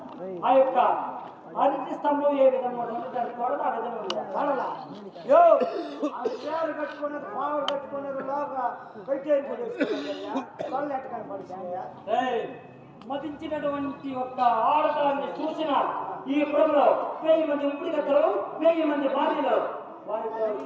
ఆ యొక్క అరటి స్తంభం ఏ విధంగా దాన్ని కొడత ఆ విధంగా చేరు కట్టుకున్నది పావులు కట్టుకున్నది లోగా పెట్టేది వాళ్ళు ఎట్టకాని పడుతున్నాయా? మతించినటువంటి ఒక ఆడదాన్ని చూసిన ఈ పురంలో 1000 మంది ఉప్పుడు కట్టరు, 1000 మంది భార్యలు వారితో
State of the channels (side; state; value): both; identical; correlation 1.00